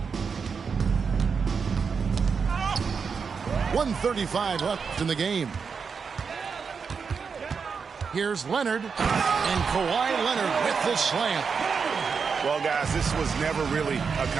.135 left in the game. Here's Leonard. And Kawhi Leonard with the slam. Well, guys, this was never really a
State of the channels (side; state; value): left; quieter; 5.7 dB